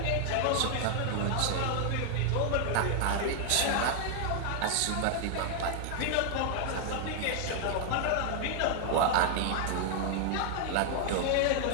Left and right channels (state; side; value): different; both; correlation 0.00